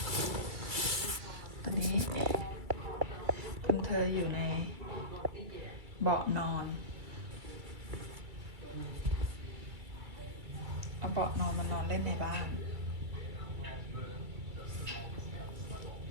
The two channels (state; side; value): late; left; 2.3 ms